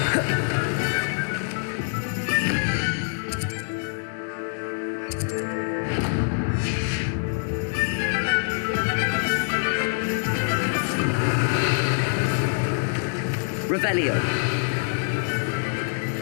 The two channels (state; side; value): silent; right; digital silence